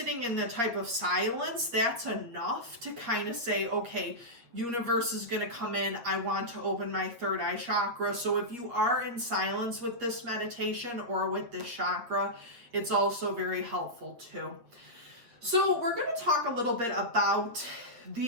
in the type of silence, that's enough to kind of say, okay, universe is going to come in. I want to open my third eye chakra. So if you are in silence with this meditation or with this chakra, it's also very helpful too. So we're going to talk a little bit about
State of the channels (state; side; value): late; left; 8.5 ms